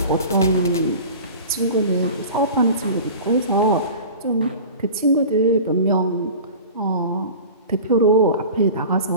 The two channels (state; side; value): inverted; both; correlation -0.37